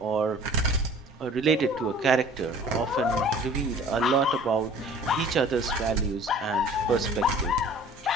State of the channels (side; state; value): both; normal; correlation 0.47